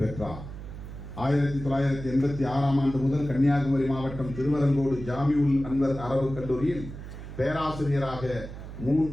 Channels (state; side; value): noise; right; hum, 11 dB below the sound